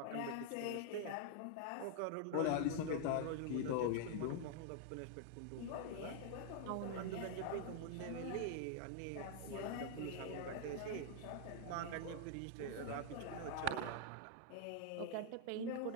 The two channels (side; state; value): both; different; correlation 0.00